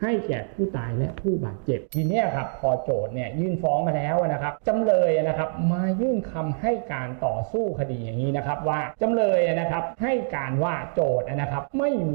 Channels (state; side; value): silent; left; digital silence